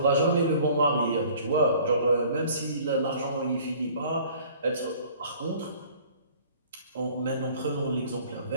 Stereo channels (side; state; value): both; inverted; correlation -0.52